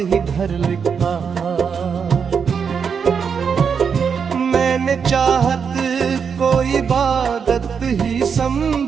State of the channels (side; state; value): left; quieter; 6.5 dB